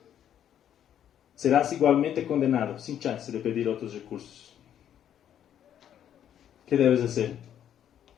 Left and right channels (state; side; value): quieter; right; 10.0 dB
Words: Serás igualmente condenado, sin chance de pedir otros recursos. ¿Qué debes hacer?